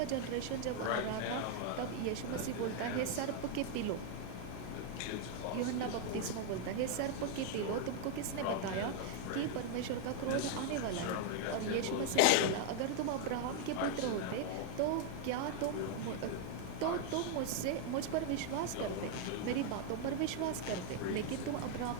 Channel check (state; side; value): different; both; correlation 0.00